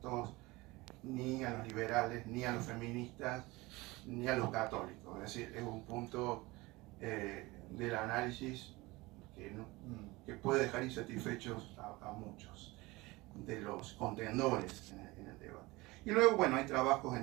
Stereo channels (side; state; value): left; quieter; 21.9 dB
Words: ni a los liberales, ni a los feministas, ni a los católicos. Es decir, es un punto del análisis que puede dejar insatisfechos a muchos de los contendores en el debate. Y luego, bueno, hay trabajos